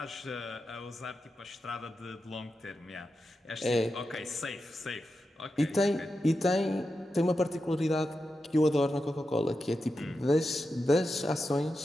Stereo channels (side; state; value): both; normal; correlation 0.90